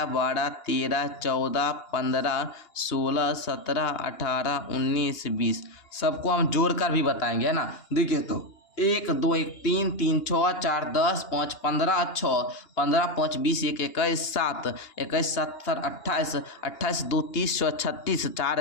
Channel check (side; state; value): right; late; 2.8 ms